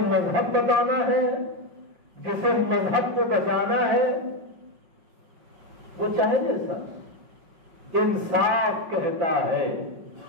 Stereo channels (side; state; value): left; late; 5.5 ms